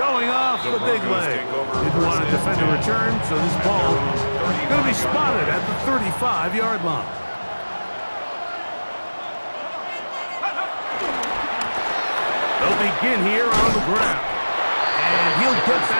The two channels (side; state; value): both; inverted; correlation -1.00